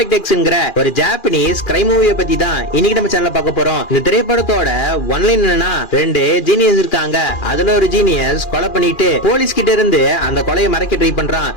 எக்ஸ்ங்கிற ஒரு ஜாப்பனீஸ் கிரைம் மூவியை பத்தி தான் இன்னைக்கு நம்ம சேனல்ல பார்க்க போறோம். இந்த திரைப்படத்தோட ஒன்லைன் என்னன்னா, ரெண்டு ஜீனியஸ் இருக்காங்க. அதுல ஒரு ஜீனியஸ் கொலை பண்ணிட்டு போலீஸ் கிட்ட இருந்து அந்த கொலையை மறைக்க ட்ரை பண்றான்.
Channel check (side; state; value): right; late; 2.4 ms